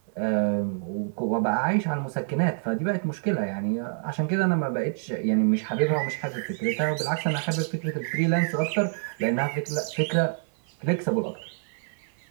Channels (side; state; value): left; silent; 60 dB below the other